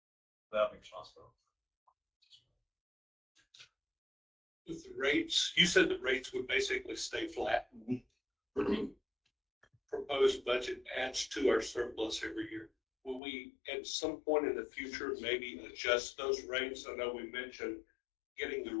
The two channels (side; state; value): right; drops out; at 13.2 s